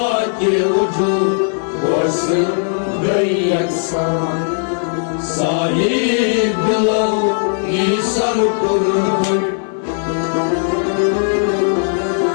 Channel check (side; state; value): right; silent; 61 dB below the other